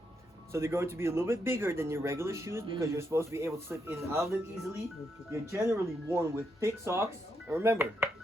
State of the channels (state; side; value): normal; both; correlation 0.80